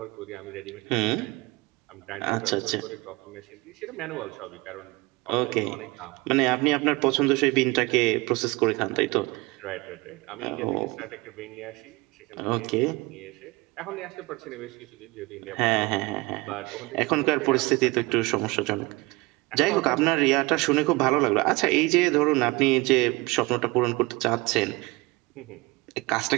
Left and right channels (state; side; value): quieter; left; 23.8 dB